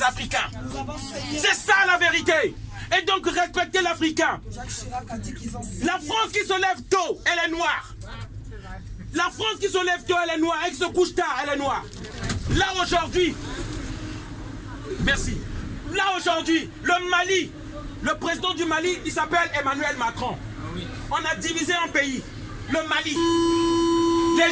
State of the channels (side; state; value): both; identical; correlation 1.00